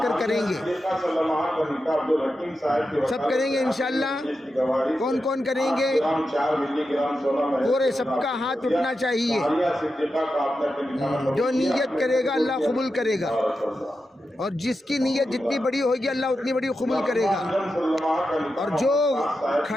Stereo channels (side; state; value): both; normal; correlation 0.89